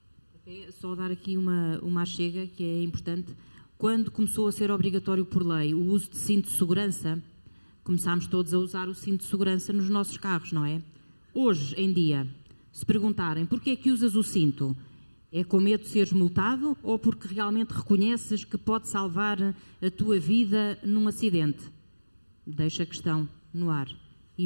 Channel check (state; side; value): inverted; both; correlation -1.00